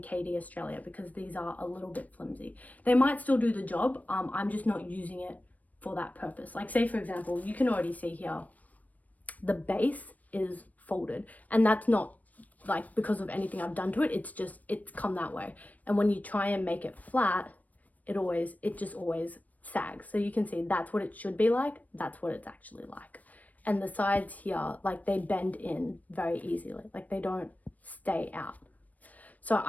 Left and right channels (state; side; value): late; right; 0.074 ms